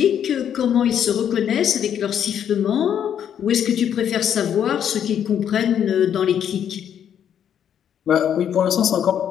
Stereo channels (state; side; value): quieter; right; 9.2 dB